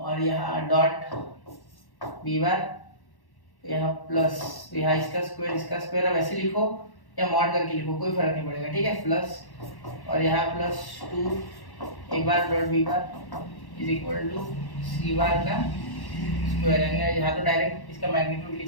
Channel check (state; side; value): late; right; 1.1 ms